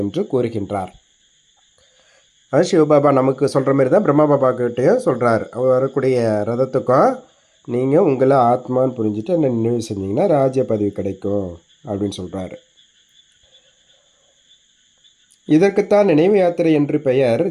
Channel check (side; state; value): both; identical; correlation 1.00